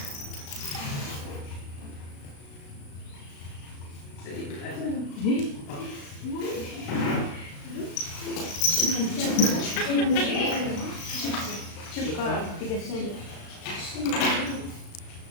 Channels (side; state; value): right; late; 36 ms